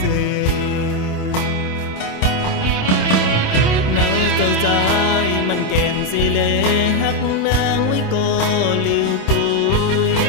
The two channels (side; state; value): right; late; 27 ms